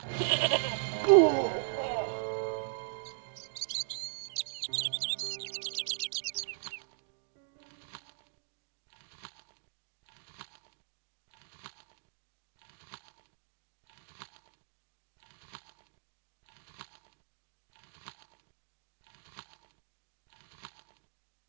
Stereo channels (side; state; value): left; silent; digital silence